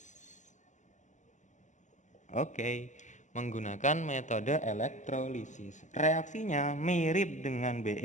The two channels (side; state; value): right; late; 0.35 ms